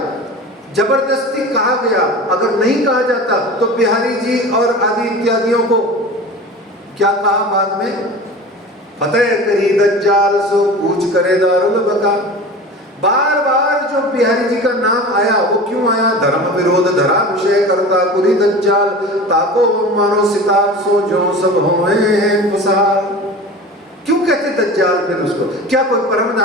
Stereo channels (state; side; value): normal; both; correlation 0.35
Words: जबरदस्ती कहा गया। अगर नहीं कहा जाता तो बिहारी जी और आदि इत्यादियों को क्या कहा बाद में, फतेह करी दज्जाल सो कूच करे दारुल बका। बार बार जो बिहारी जी का नाम आया वो क्यों आया, धर्म विरोध धरा विषय करता कुरी दज्जाल, ताको मानो सिताब सो जो सब होए फसाल। क्यों कहते दज्जाल फिर उसको, क्या कोई परम